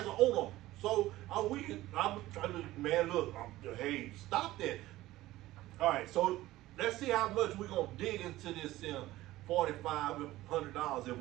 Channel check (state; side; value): quieter; left; 16.6 dB